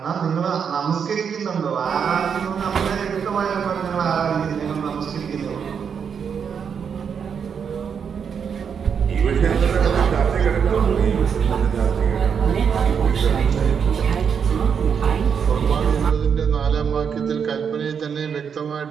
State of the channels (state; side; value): quieter; left; 7.0 dB